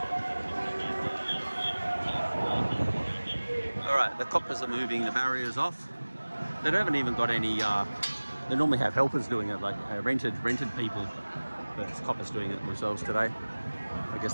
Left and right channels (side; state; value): both; inverted; correlation -1.00